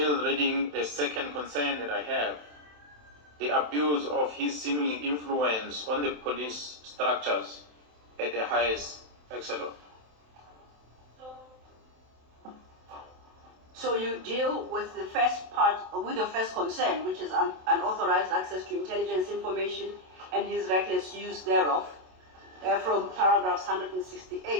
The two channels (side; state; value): left; late; 27 ms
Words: reading the second concern that I have. The abuse of his seeming influence on the police structures at the highest echelon. So you deal with the first part, with the first concern, which is unauthorized access to intelligence information and his reckless use thereof, from paragraphs